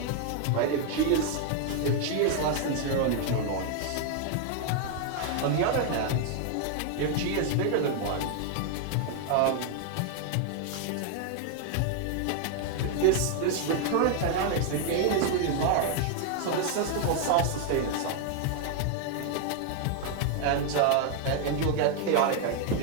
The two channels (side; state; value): both; different; correlation 0.00